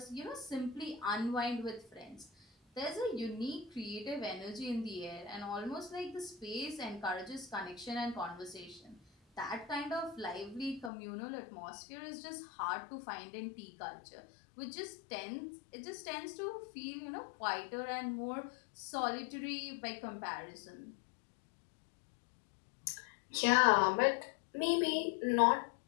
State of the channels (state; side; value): drops out; right; at 10.9 s